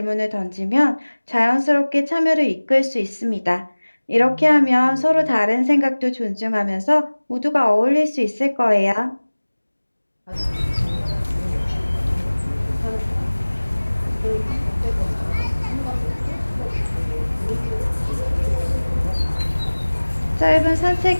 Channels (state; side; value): inverted; both; correlation -1.00